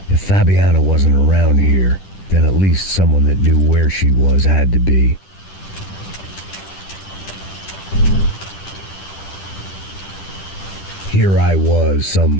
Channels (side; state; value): right; late; 10 ms